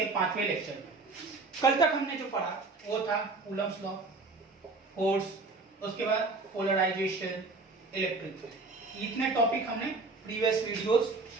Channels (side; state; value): left; quieter; 3.6 dB